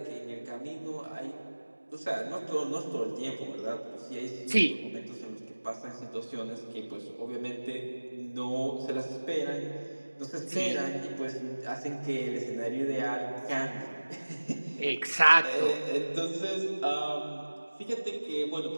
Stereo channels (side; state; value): both; inverted; correlation -1.00